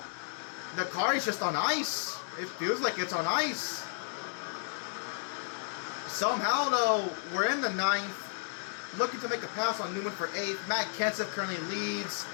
The car is just on ice. It feels like it's on ice. Somehow, though, we're in the 9th. Looking to make a pass on Newman for 8th. Matt Kenseth currently leads.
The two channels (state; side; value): silent; right; digital silence